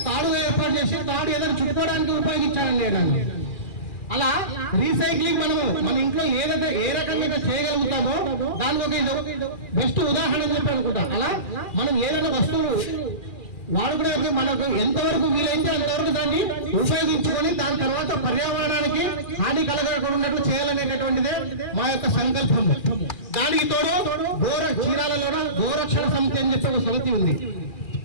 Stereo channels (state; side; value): late; right; 2.4 ms